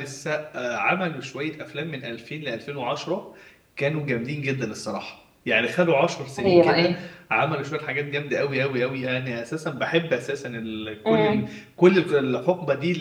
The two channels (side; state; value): both; identical; correlation 1.00